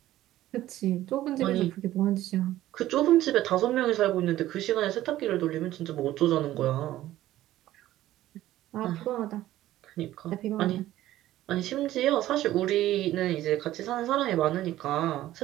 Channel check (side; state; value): left; quieter; 14.4 dB